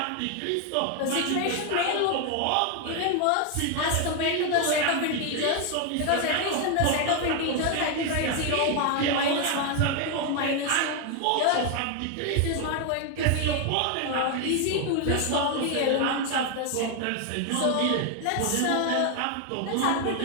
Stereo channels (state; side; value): different; both; correlation 0.01